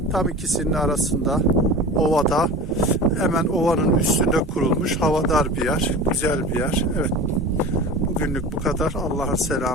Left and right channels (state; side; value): normal; both; correlation 0.34